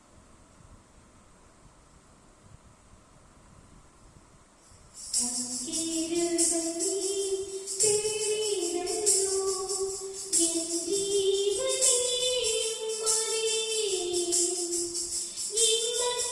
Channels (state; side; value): identical; both; correlation 1.00